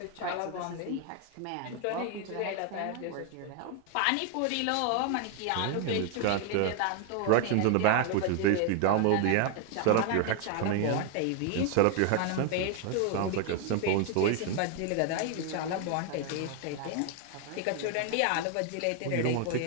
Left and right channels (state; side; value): different; both; correlation 0.00